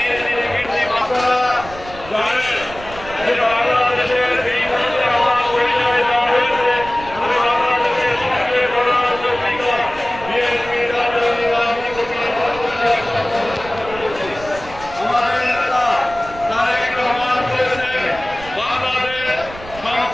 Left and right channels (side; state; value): right; noise; rumble, 16 dB below the sound